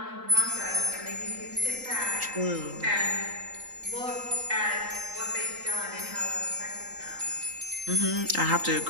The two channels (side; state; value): left; late; 3.8 ms